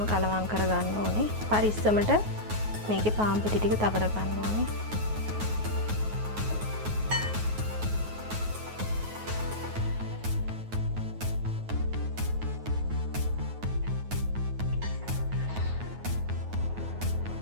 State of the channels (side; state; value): left; late; 9.4 ms